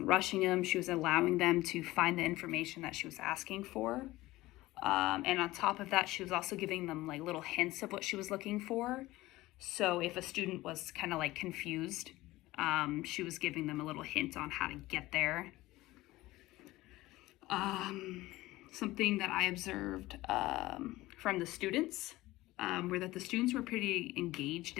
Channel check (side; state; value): right; quieter; 18.1 dB